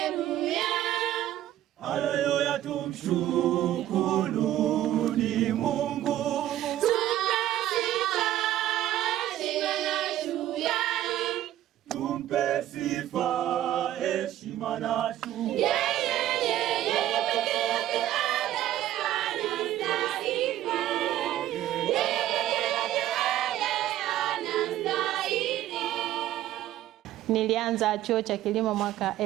Haleluya, tumshukuruni Mungu. Tumpe sifa, heshima na shukrani. Nilianza chuo cha kilimo mwaka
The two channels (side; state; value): left; quieter; 13.1 dB